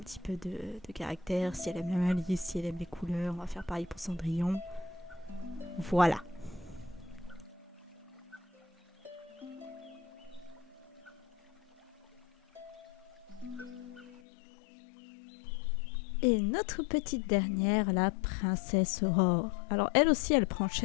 peu de caractère. Si elle aime la malice, si elle aime les couleurs, on va faire pareil pour Cendrillon. Voilà. Et notre petite dernière, la princesse Aurore. Alors, elle aussi, elle prend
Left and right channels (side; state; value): right; drops out; at 14.2 s